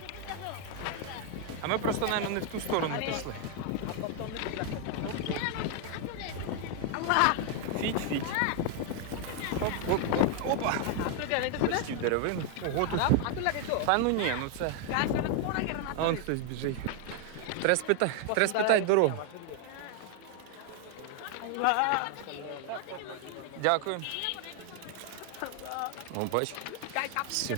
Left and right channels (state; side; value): different; both; correlation 0.00